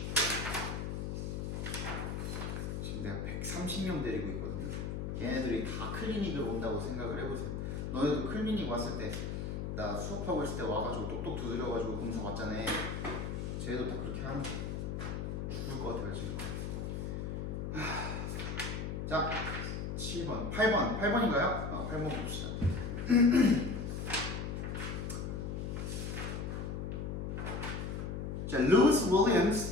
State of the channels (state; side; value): noise; left; hum, 3 dB below the sound